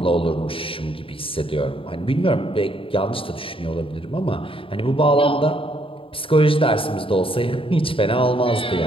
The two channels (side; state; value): right; late; 0.26 ms